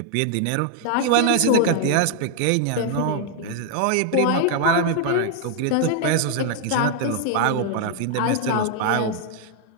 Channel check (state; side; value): different; both; correlation 0.00